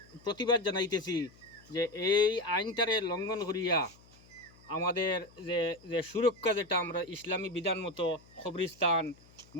প্রতিবাদ জানাইতেছি যে এই আইনটারে লঙ্ঘন করিয়া আমাদের যে যে সুরক্ষা যেটা আমরা ইসলামী বিধান মতো কবরস্থান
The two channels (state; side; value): noise; left; hum, 26 dB below the sound